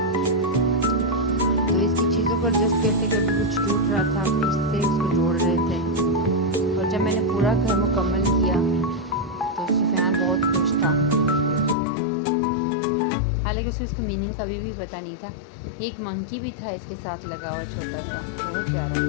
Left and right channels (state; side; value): drops out; right; at 11.8 s